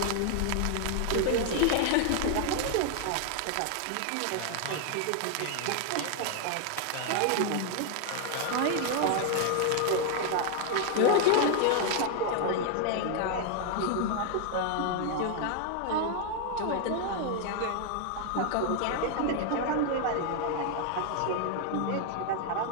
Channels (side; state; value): both; different; correlation 0.00